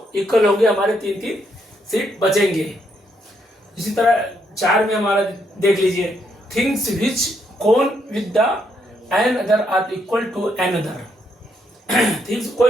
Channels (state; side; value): normal; both; correlation 0.75